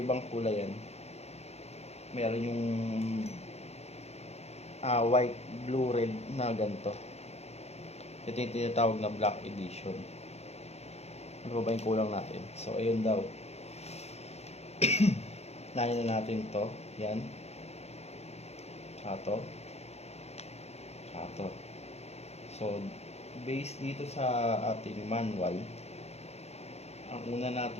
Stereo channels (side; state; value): right; late; 0.31 ms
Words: kulay yan. Meron yung white, blue, red na ganito. Ito yung tinatawag na black edition. Ano ba yung kulang natin? So, ayun daw. Nahin na natin to. Yan. Tsaka to. So, based dito sa ating manual, ang una